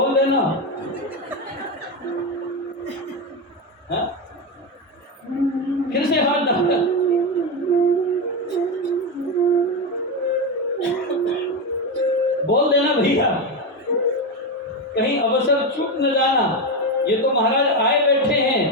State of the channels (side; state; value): both; normal; correlation 0.12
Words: देना। हाँ? फिर से हाथ दबाया, बोल देना भैया, कहीं अवसर चूक न जाना। ये तो महाराज आए बैठे